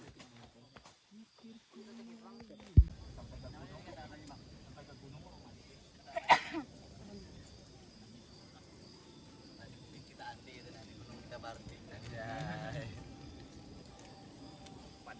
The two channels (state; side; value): identical; both; correlation 1.00